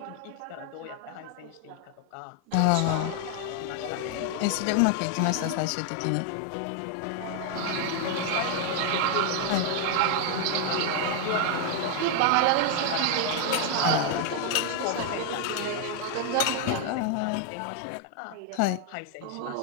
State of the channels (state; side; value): different; both; correlation 0.00